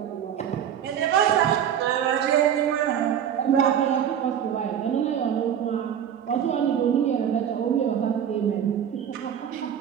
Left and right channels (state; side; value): quieter; left; 9.2 dB